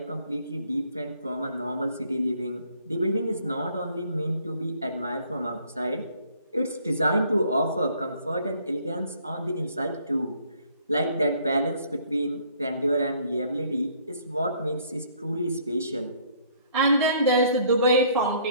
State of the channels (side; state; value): both; inverted; correlation -0.62